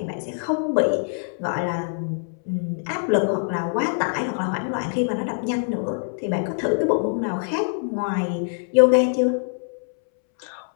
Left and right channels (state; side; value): silent; right; 63 dB below the other